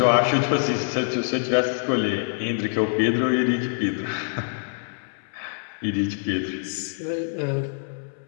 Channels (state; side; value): silent; right; 62 dB below the other